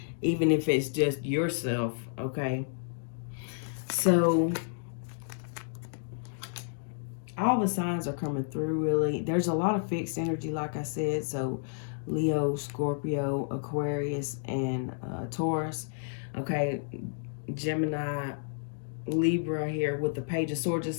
even if it's just yourself. Okay, so all the signs are coming through. Really, there's a lot of fixed energy, like I said. So Leo, Scorpio, Aquarius, and Taurus. Okay, Gemini, Libra here with the Page of Swords.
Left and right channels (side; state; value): right; silent; digital silence